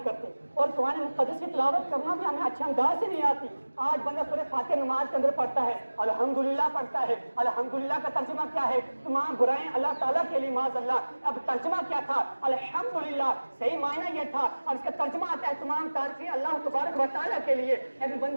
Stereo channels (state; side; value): inverted; both; correlation -1.00